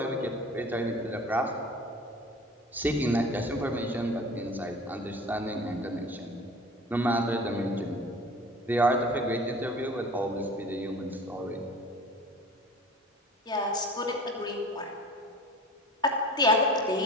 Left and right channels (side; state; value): both; normal; correlation 0.41